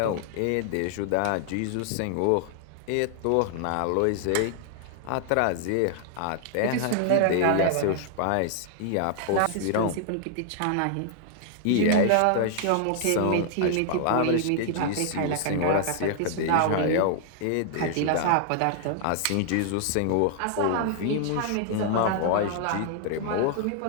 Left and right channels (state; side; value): different; both; correlation 0.00